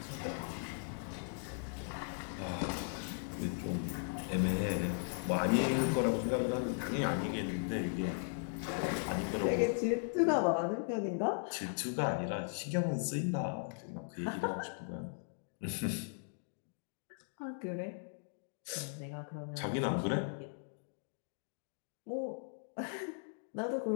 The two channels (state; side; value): silent; right; digital silence